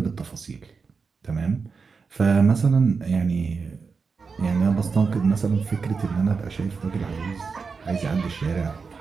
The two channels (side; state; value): left; quieter; 5.0 dB